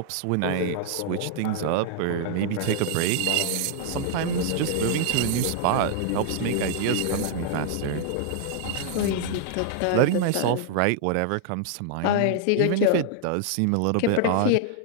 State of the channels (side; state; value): both; different; correlation -0.01